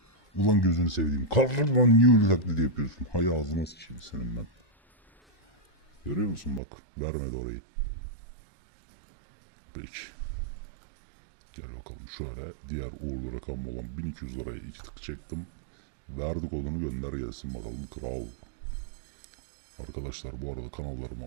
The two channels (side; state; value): left; drops out; at 6.6 s